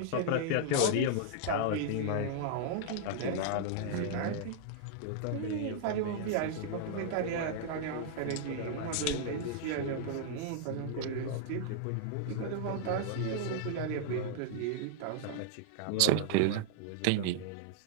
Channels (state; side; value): different; both; correlation -0.01